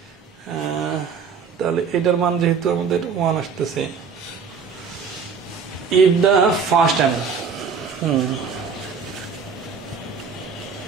তাহলে এটার মান যেহেতু আমাদের 1 আসতেছে, if the first time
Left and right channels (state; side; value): quieter; left; 5.9 dB